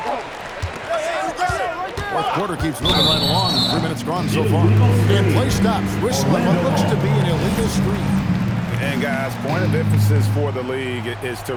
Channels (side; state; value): both; identical; correlation 1.00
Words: Fourth quarter keeps moving right along. 3 minutes gone so far. And play stops, whistling what looks to be an illegal screen. And guys, point of emphasis for the league is to